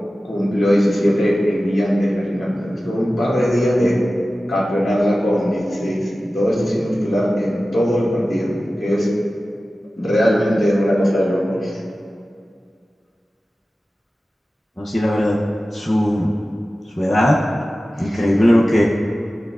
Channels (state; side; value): normal; both; correlation 0.95